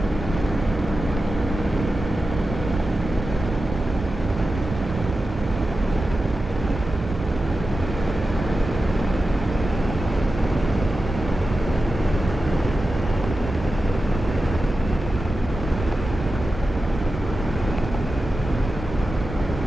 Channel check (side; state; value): both; normal; correlation 0.92